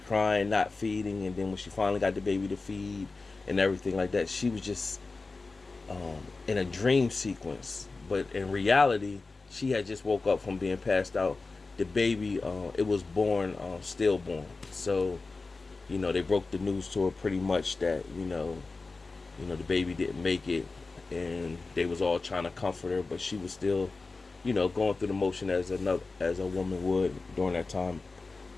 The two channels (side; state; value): right; quieter; 3.8 dB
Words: not feeding, and then when she finally got the baby to feed and everything like that, she was just in a dream sequence. But in reality, she had just woke up from being passed out. The baby, it was born stillborn. So, they broke the news to her pretty much that, the baby didn't make it, and they was all trying to comfort her, but she was still, going through the motion as a woman would during that time,